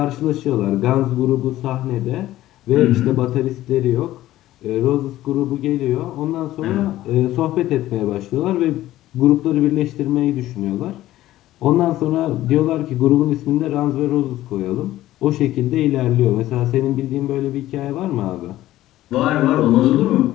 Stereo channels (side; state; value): right; quieter; 14.9 dB